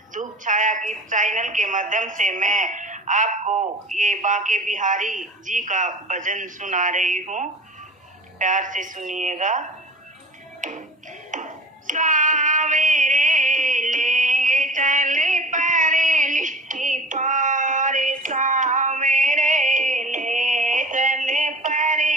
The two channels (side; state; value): both; normal; correlation 0.39